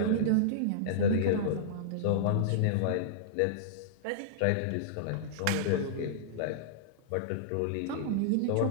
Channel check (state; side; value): different; both; correlation -0.02